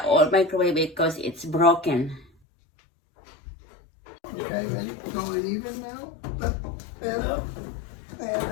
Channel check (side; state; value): right; drops out; at 2.2 s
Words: old microwave because it's broken. Okay, and it's going even now. And